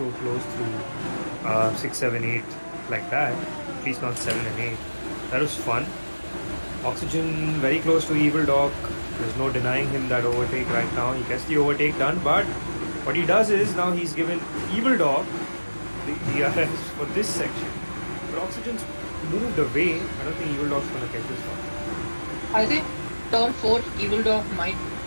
close through 6, 7, 8 like that. At least not 7 and 8. That was fun. Oxygen very close to Evil Dog. There's no denying him that overtake right now. He gets the overtake done, but what he does is now he's given Evil Dog the DRS for this section. But Oxygen's moved away. I don't think Evil Dog's gonna catch this one. I think turn 4, Evil Dog might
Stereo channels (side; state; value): both; inverted; correlation -1.00